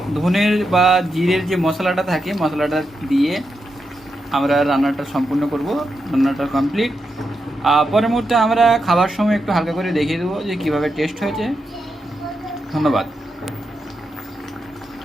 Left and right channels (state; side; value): normal; both; correlation 0.86